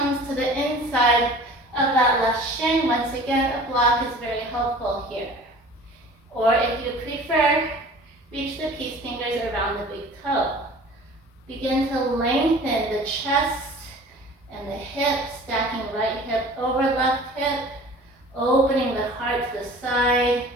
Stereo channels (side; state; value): both; normal; correlation 0.44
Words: to the inside of that left shin. Once again, a block is very helpful here. Or if you prefer, reach the peace fingers around the big toe. Begin to lengthen the chest and the hip, stacking right hip over left hip, opening the heart to the side.